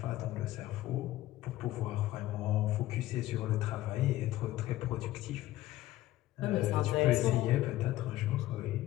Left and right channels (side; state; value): right; quieter; 15.6 dB